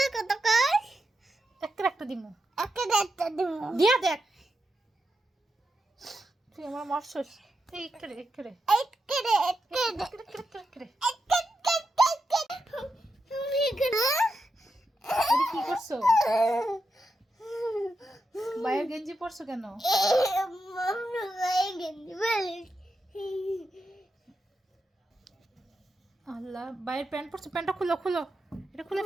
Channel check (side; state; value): both; normal; correlation 0.87